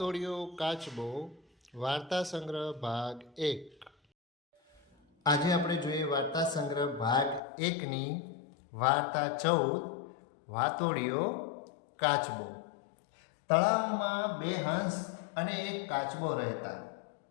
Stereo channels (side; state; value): right; drops out; at 7.4 s